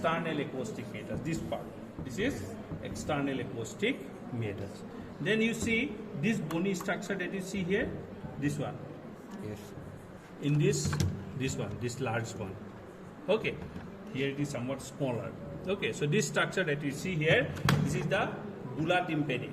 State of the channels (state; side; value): identical; both; correlation 1.00